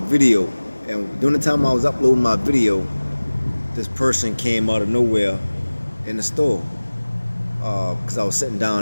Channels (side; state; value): both; inverted; correlation -1.00